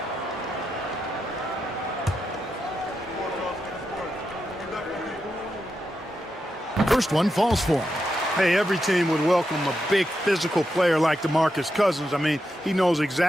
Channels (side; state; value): both; normal; correlation 0.86